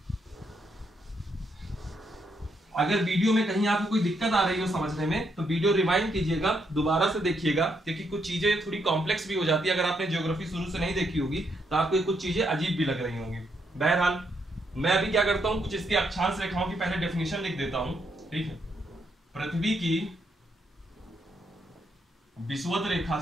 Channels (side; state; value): both; normal; correlation 0.77